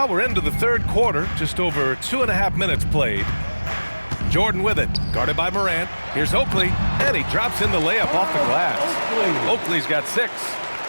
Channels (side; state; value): both; inverted; correlation -1.00